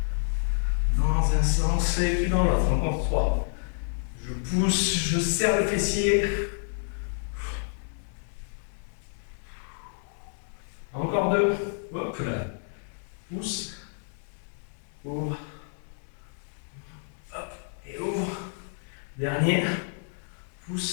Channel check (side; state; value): right; silent; digital silence